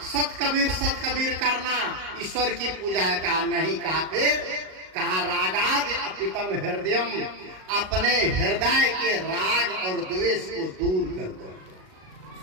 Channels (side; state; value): left; late; 38 ms